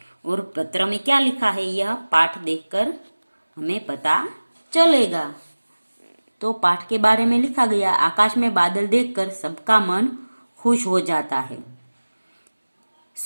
और पत्र में क्या लिखा है यह पाठ देखकर हमें पता चलेगा। तो पाठ के बारे में लिखा गया, आकाश में बादल देखकर सबका मन खुश हो जाता है।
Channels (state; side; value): inverted; both; correlation -1.00